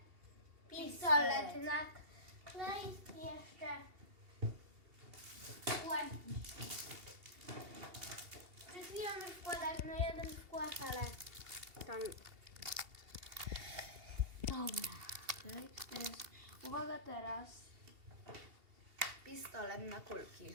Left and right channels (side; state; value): left; late; 2.8 ms